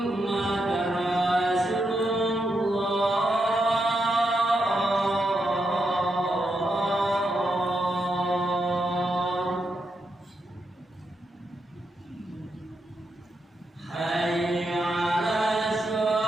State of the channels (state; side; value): normal; both; correlation 0.83